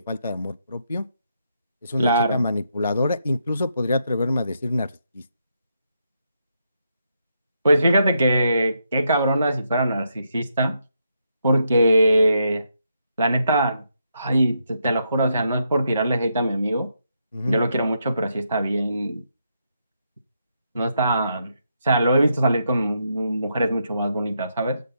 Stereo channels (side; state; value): both; inverted; correlation -0.79